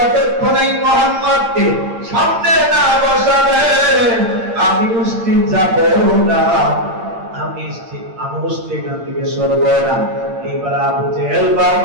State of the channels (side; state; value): left; late; 8.8 ms